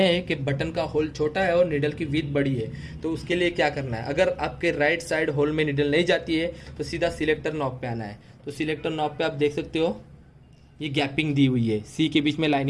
कि बटन का होल छोटा है और नीडल की विड्थ बड़ी है। तो उसके लिए क्या करना है, अगर आपके राइट साइड होल में नीडल नहीं जाती है तो सीधा सिलेक्टर नॉब पे आना है। तो सिलेक्टर नॉब पे आप देख सकते हो ये गैपिंग दी हुई है, सी के बीच में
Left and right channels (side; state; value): both; identical; correlation 1.00